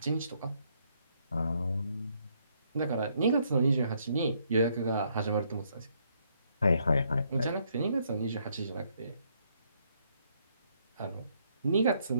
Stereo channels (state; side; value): inverted; both; correlation -0.71